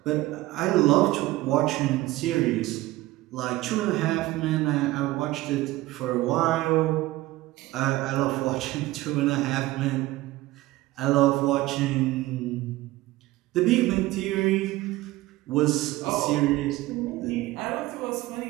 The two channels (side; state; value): left; quieter; 17.8 dB